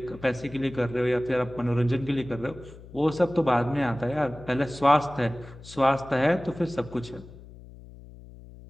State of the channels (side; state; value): left; noise; hum, 18 dB below the sound